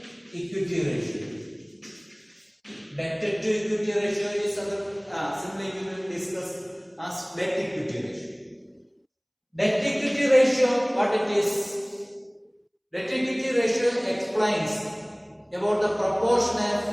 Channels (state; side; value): identical; both; correlation 1.00